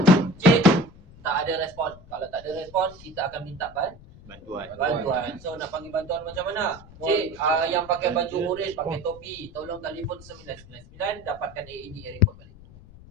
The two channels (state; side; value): noise; left; rumble, 21 dB below the sound